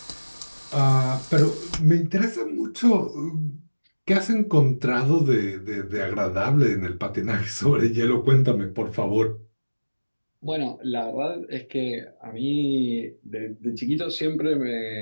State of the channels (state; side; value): inverted; both; correlation -1.00